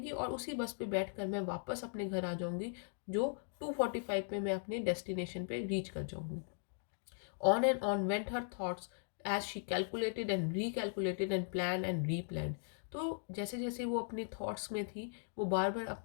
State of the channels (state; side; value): silent; right; digital silence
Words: और उसी बस पे बैठकर मैं वापस अपने घर आ जाऊंगी, जो 2:45 पे मैं अपने डेस्टिनेशन पे रीच कर जाऊंगी। On and on went her thoughts as she calculated and recalculated and planned and replanned. तो जैसे जैसे वो अपनी थॉट्स में थी, वो बार बार